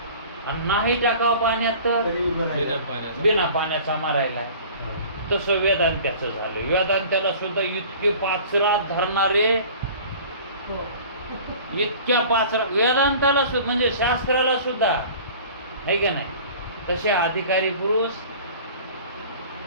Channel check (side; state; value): both; inverted; correlation -0.44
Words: आणि नाही टाकावं पाण्यात तर बिना पाण्याचा मारायला. तसं वेदांत्याचं झालं. वेदांत्याला सुद्धा इतके पाचरात धरणारे, इतक्या पाचरा वेदांताला सुद्धा म्हणजे शास्त्राला सुद्धा आहे का नाही, तसे अधिकारी पुरुष